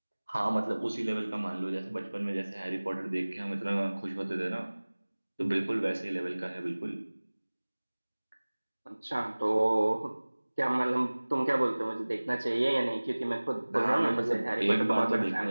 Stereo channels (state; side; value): inverted; both; correlation -1.00